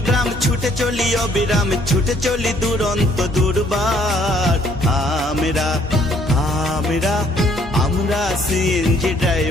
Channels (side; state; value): both; normal; correlation 0.64